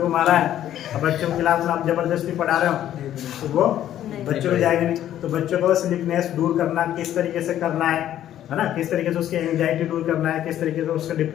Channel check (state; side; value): quieter; right; 11.7 dB